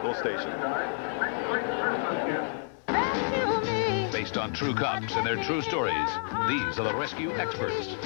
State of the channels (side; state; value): right; silent; digital silence